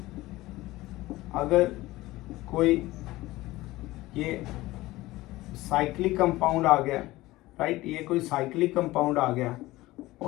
अगर कोई ये साइक्लिक कंपाउंड आ गया, राइट, ये कोई साइक्लिक कंपाउंड आ गया,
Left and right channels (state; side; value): quieter; right; 18.3 dB